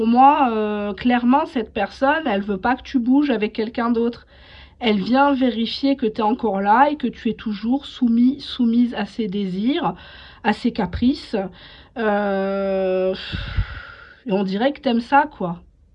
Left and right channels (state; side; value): identical; both; correlation 1.00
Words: moi, clairement, cette personne, elle veut pas que tu bouges avec quelqu'un d'autre. Elle vient vérifier que tu es encore là et que tu es toujours soumise à ses désirs, à ses caprices. Et on dirait que t'aimes ça, quoi.